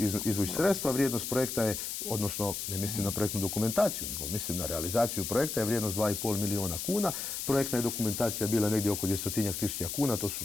izvući sredstva. Vrijednost projekta je, odnosno ne mislim na projektnu dokumentaciju, nego mislim na realizaciju projekta, je vrijednost 2,5 milijuna kuna. Projektna je dokumentacija bila negdje oko 200.000 kuna,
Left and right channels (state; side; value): noise; left; hiss, 4 dB below the sound